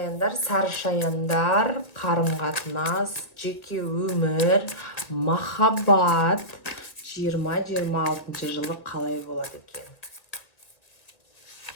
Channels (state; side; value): late; right; 1.7 ms